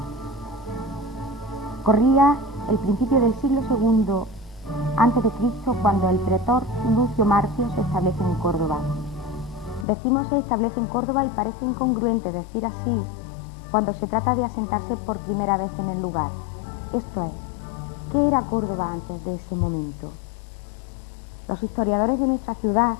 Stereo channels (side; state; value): right; drops out; at 9.9 s